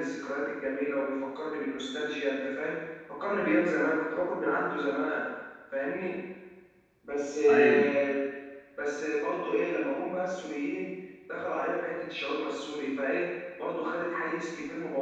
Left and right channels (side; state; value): both; identical; correlation 1.00